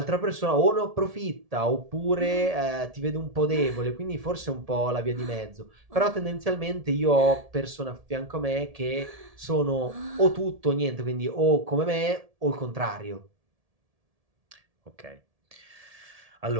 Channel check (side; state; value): left; late; 1.7 ms